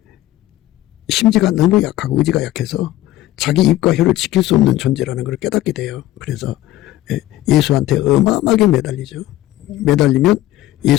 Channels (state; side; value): quieter; right; 15.1 dB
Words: 심지가 너무 약하고 의지가 약해서 자기 입과 혀를 지킬 수 없는 존재라는 걸 깨닫게 돼요. 그래서 예수한테 어마어마하게 매달리죠. 매달리면